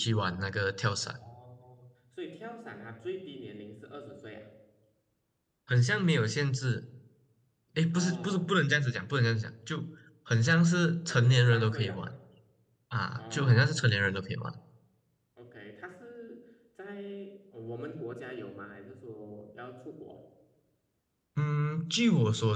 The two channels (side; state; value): both; identical; correlation 1.00